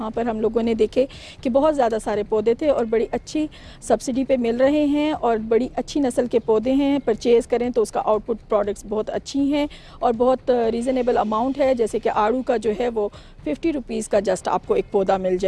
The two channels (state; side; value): identical; both; correlation 1.00